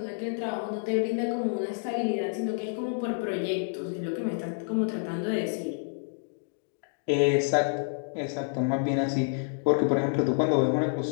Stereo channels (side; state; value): right; silent; digital silence